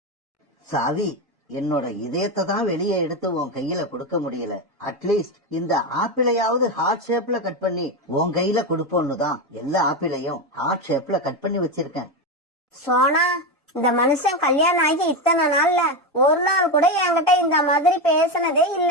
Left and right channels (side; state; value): both; normal; correlation 0.13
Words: சாவி, என்னோட இதயத்தை தான் வெளியே எடுத்து உன் கையில கொடுக்க முடியல. அட்லீஸ்ட் இந்த ஆப்பிளையாவது ஹார்ட் ஷேப்ல கட் பண்ணி உன் கையில கொடுப்போன்னு தான் எல்லா ஆப்பிளையும் ஹார்ட் ஷேப்ல கட் பண்ணி வச்சிருக்கேன். சோனா, இந்த மனுஷன் கல்யாணம் ஆகி இத்தனை நாள்ல ஒரு நாள் கூட என்கிட்ட இந்த மாதிரி பேசினதே